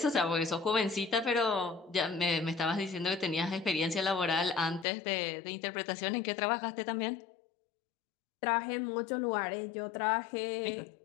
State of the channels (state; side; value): drops out; right; at 4.9 s